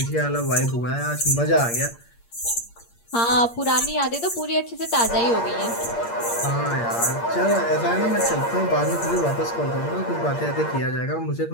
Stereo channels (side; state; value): right; late; 8.6 ms